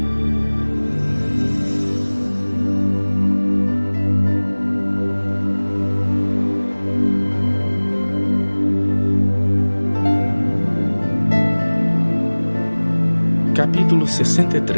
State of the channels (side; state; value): both; inverted; correlation -1.00